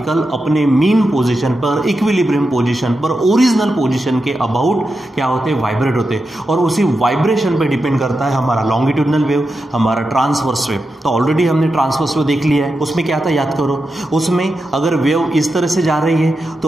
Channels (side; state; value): both; normal; correlation 0.89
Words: अपने मीन पोजिशन पर, इक्विलिब्रियम पोजिशन पर, ओरिजिनल पोजिशन के अबाउट क्या होते हैं, वाइब्रेट होते हैं, और उसी वाइब्रेशन पे डिपेंड करता है हमारा लॉन्गिट्यूडनल वेव, हमारा ट्रांसवर्स वेव। तो ऑलरेडी हमने ट्रांसवर्स वेव देख लिया है, उसमें क्या था याद करो। उसमें अगर वेव इस तरह से जा रही है